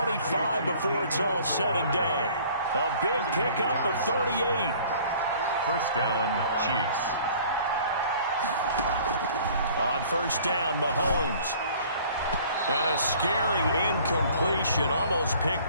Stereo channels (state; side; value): inverted; both; correlation -0.52